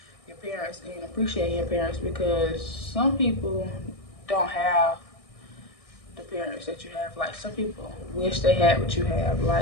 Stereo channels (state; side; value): late; right; 1.6 ms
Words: your parents and appreciating your parents, because some people don't have the parents that you have. Like, some people wish they had what you have.